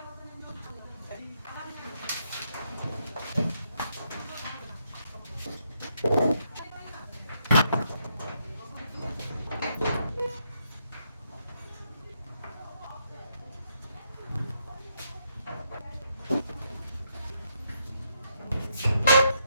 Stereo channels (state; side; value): inverted; both; correlation -0.77